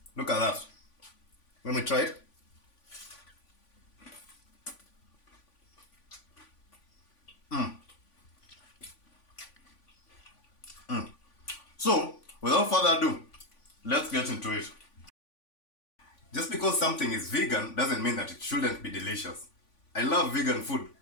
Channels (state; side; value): late; right; 3.5 ms